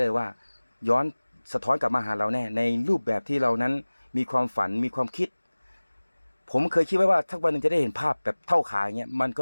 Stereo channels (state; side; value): inverted; both; correlation -1.00